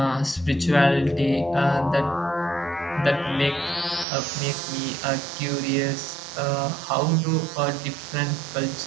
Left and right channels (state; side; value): drops out; left; at 4.0 s